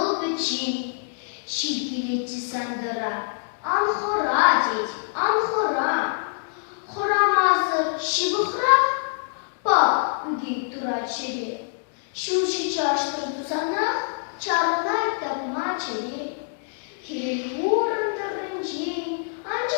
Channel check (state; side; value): silent; right; digital silence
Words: biçi, şirkileci sandıra, anhora dedi, anhora, horamazı şibıhra, bak bugün duraçeri. Şuşi çarştırdı sana, çarınay tapma çeli. Hilvurun tırınci,